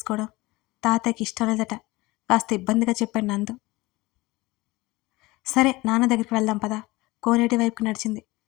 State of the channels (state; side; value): quieter; right; 21.2 dB